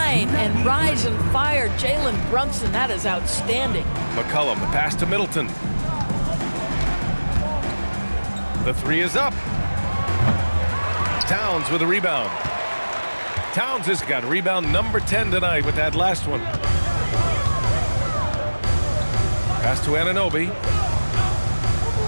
and rise and fire. Jalen Brunson, that is outstanding. McCollum, the pass to Middleton. The 3 is up. Towns with a rebound. Towns has got rebound number 10 tonight with that last one. Pass to Anunoby.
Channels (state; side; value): inverted; both; correlation -1.00